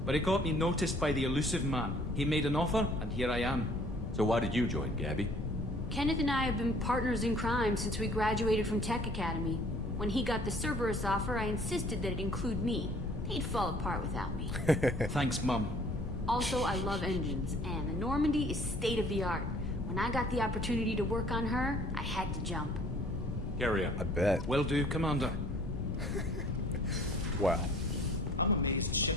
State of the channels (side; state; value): left; noise; rumble, 5 dB below the sound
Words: But it got me noticed by the elusive man. He made an offer, and here I am. So why did you join, Gabby? Kenneth and I have been partners in crime since we graduated from Tech Academy. When he got the Cerberus offer, I insisted that it include me. He'd fall apart without me. Thanks, Mum. Also, I love engines, and the Normandy is state-of-the-art. When I got the opportunity to work on her, I had to jump. Carry on. I bet. Will do, Commander. Wow. I'm amazed